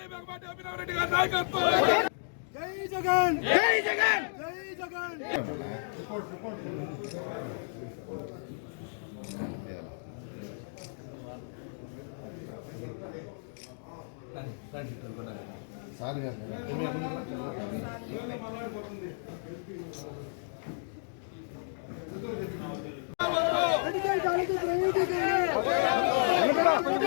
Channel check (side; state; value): right; silent; digital silence